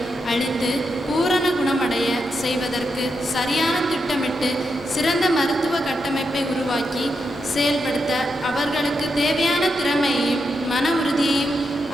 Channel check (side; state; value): both; normal; correlation 0.84